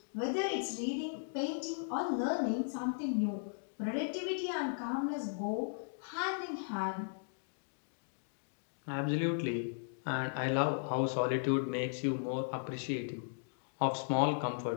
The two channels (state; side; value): silent; right; digital silence